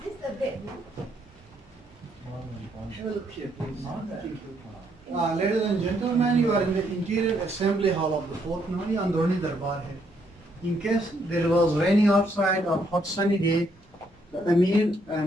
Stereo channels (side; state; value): both; normal; correlation 0.73